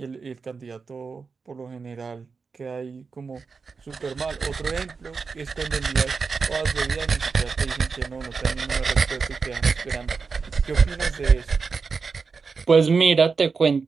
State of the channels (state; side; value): quieter; left; 5.0 dB